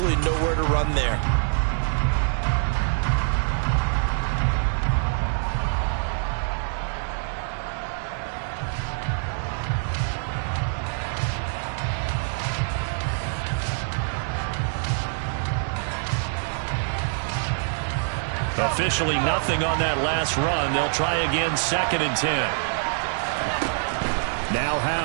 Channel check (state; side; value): silent; left; 62 dB below the other